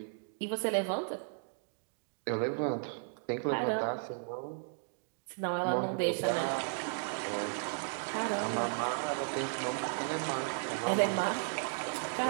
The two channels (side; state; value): left; silent; digital silence